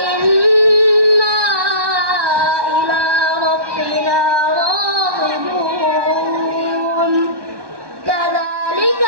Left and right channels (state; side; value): late; left; 1.2 ms